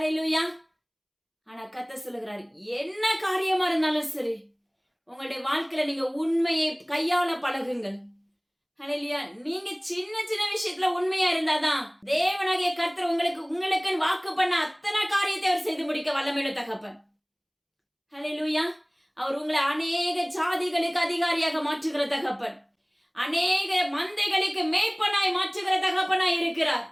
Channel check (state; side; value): identical; both; correlation 1.00